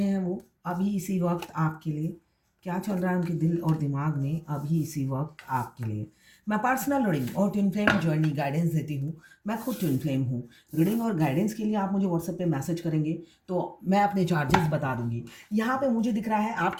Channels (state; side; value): identical; both; correlation 1.00